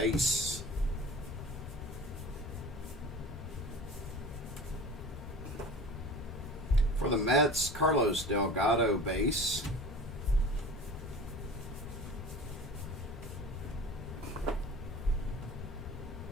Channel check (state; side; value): normal; both; correlation 0.38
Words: For the Mets, Carlos Delgado, base.